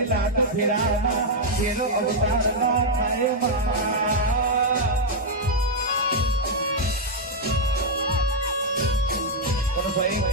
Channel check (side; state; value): both; normal; correlation -0.02